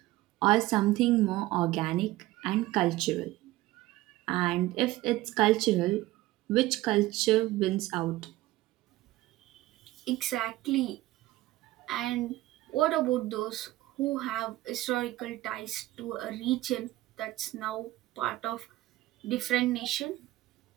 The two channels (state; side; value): quieter; left; 17.4 dB